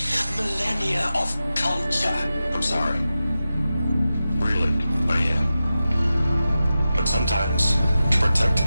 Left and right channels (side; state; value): both; inverted; correlation -0.93